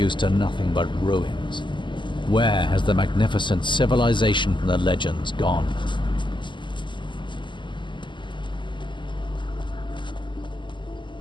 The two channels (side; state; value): right; late; 0.23 ms